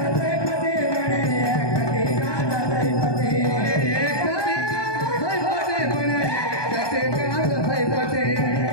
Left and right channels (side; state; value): right; late; 1.2 ms